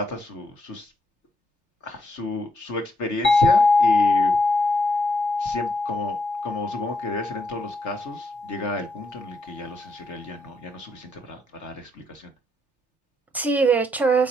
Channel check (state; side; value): normal; both; correlation 0.78